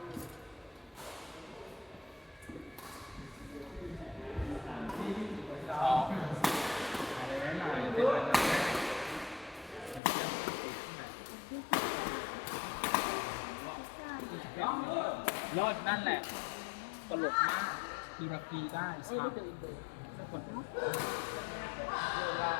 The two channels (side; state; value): right; drops out; at 10.0 s